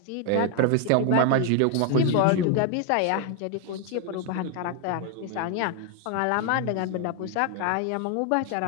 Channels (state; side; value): different; both; correlation 0.00